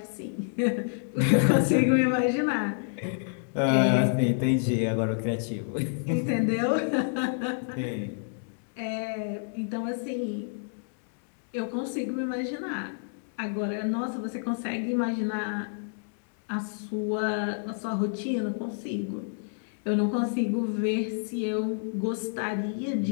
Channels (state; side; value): silent; right; digital silence